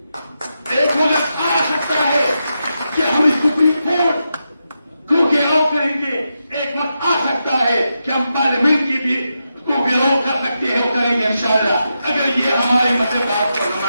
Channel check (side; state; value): both; inverted; correlation -0.87